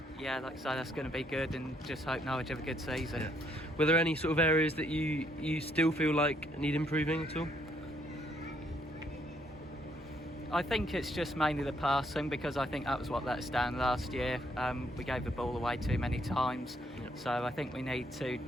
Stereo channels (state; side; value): normal; both; correlation 0.70